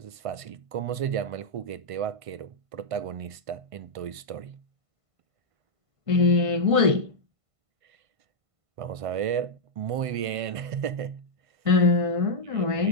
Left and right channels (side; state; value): left; late; 1.5 ms